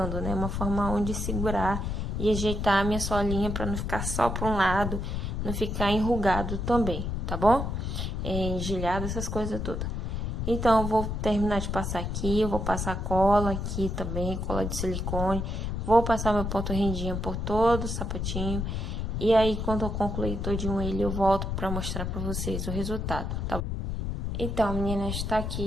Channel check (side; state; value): left; noise; rumble, 2 dB below the sound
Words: né? Uma forma onde segurar e ajeitar a minha solinha para não ficar só para um lado, não ficar enrugado também, tá bom? Engilhado, essas coisas todas. Então, eu vou terminar de passar aqui, eu vou passar cola aqui também, cola de silicone. Vou passar meu ponto rendinha por todo o sapatinho. E aí, quando eu concluir todinho ele, eu volto pra mostrar pra vocês o resultado, tá bom? Então, meninas, está